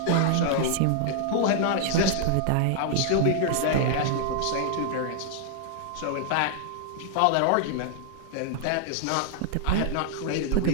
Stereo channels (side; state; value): both; different; correlation -0.01